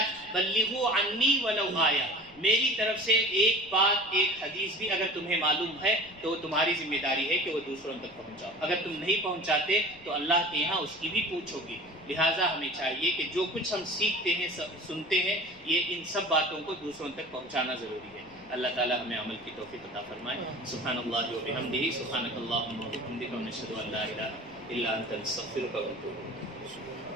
بلغوا عنی ولو آیہ، میری طرف سے ایک بات، ایک حدیث بھی اگر تمہیں معلوم ہے تو تمہاری ذمہ داری ہے کہ وہ دوسروں تک پہنچاؤ۔ اگر تم نہیں پہنچاتے تو اللہ کے یہاں اس کی بھی پوچھ ہوگی۔ لہٰذا ہمیں چاہیے کہ جو کچھ ہم سیکھتے ہیں، سنتے ہیں، یہ ان سب باتوں کو دوسروں تک پہنچانا ضروری ہے۔ اللہ تعالیٰ ہمیں عمل کی توفیق عطا فرمائے۔ سبحان اللہ و بحمدہ، سبحانک اللہم و بحمدک، ونشہد ان لا الہ الا انت، نستغفرک ونتوب الیک۔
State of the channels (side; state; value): left; noise; rumble, 26 dB below the sound